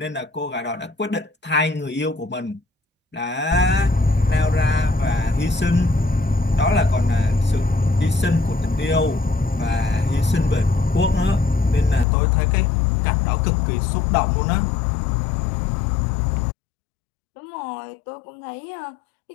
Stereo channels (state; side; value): drops out; right; at 12.1 s